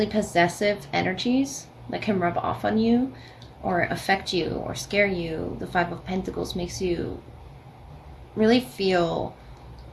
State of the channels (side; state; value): both; identical; correlation 1.00